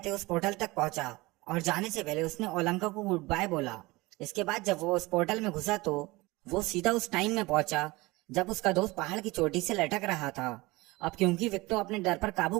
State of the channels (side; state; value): left; quieter; 22.0 dB